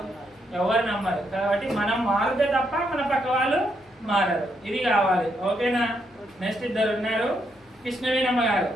ఎవరు నమ్మరు. కాబట్టి మనం మారితే తప్ప మన పక్క వాళ్ళు మారరు. ఇది కావాలి. ఓకేనా? నెక్స్ట్ ఇద్దరు ఉన్నారు, కృష్ణవేణమ్మ గారు.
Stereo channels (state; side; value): normal; both; correlation 0.78